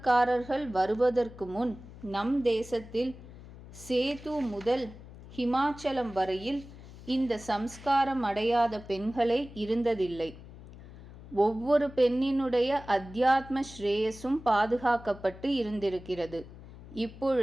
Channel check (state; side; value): noise; left; hum, 17 dB below the sound